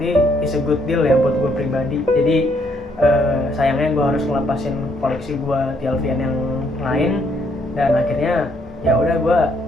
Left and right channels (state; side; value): normal; both; correlation 0.70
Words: it's a good deal ya buat gue pribadi. Jadi sayangnya gue harus ngelepasin koleksi gue TLVN yang lain, dan akhirnya ya udah gue